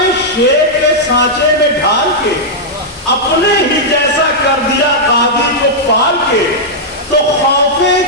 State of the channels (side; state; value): both; normal; correlation -0.07